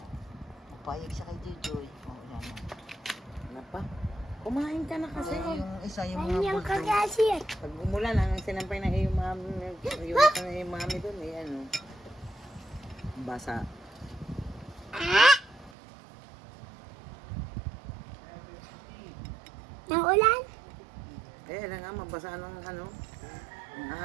Papayag siya kay Jojoy. Oh, yan. Ano pa? Kumain ka na kasi. Yung isa yung mga Kanyang bulldog. kagasir. Pag umulan, ang sinampay ng iyong mami, yung mami doon, eh, ano, basa. Nang ulan? Eh, alam nga, mabasa ng ano, ng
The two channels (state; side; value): drops out; left; at 15.7 s